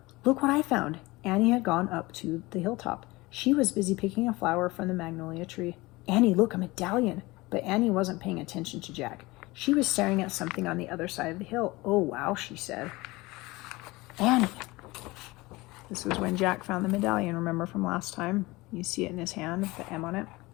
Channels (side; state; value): right; quieter; 21.6 dB